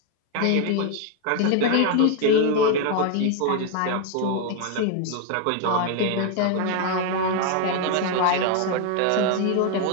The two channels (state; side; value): different; both; correlation 0.01